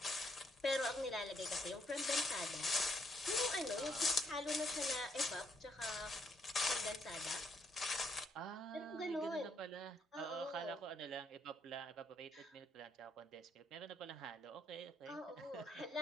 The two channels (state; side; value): normal; both; correlation 0.73